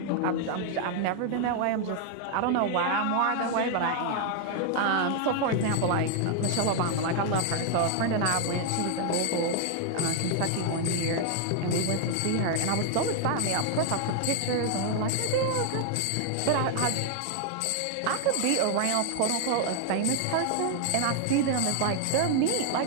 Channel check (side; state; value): both; different; correlation 0.00